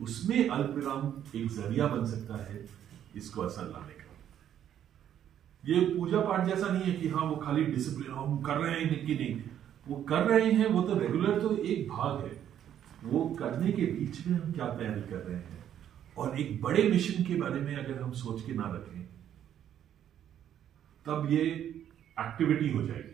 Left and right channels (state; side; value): quieter; left; 10.2 dB